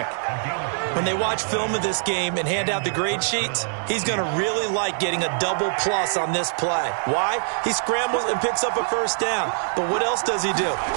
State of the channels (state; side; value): silent; left; digital silence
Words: When they watch film of this game and hand out the grade sheets, he's going to really like getting a double plus on this play. Why? He scrambles and picks up a first down. But what else does he do?